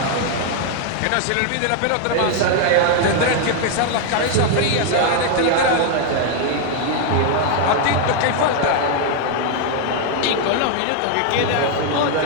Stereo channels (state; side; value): different; both; correlation 0.00